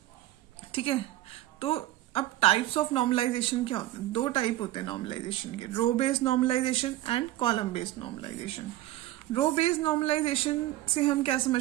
ठीक है, तो अब टाइप्स ऑफ नॉर्मलाइजेशन क्या होते हैं? 2 टाइप होते हैं नॉर्मलाइजेशन के, row based normalization and column based normalization. Row based normalization से हम क्या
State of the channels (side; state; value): left; quieter; 15.4 dB